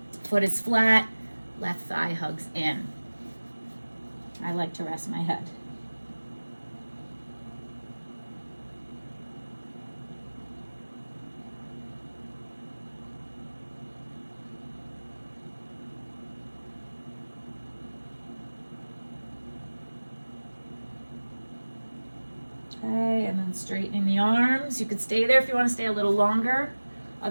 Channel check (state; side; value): inverted; both; correlation -1.00